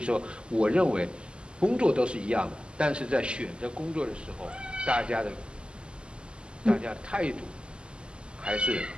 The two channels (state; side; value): late; left; 0.050 ms